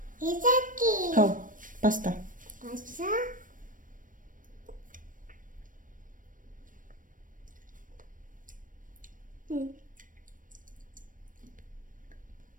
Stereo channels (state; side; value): late; left; 0.38 ms